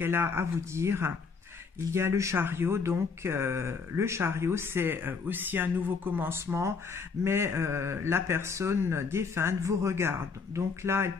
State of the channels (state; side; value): quieter; right; 5.1 dB